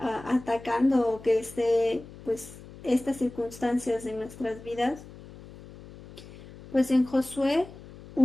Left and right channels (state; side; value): noise; left; hum, 18 dB below the sound